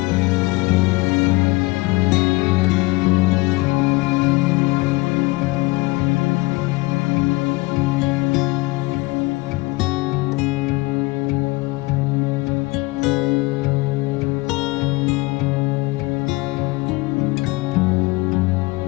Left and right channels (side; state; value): right; quieter; 23.4 dB